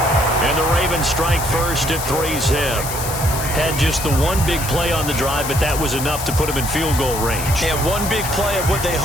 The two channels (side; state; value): left; noise; hiss, 7 dB below the sound